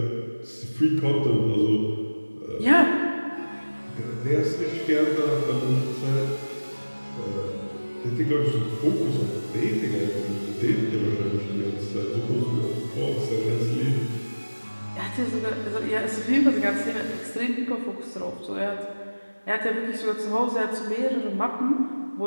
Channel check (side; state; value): both; inverted; correlation -1.00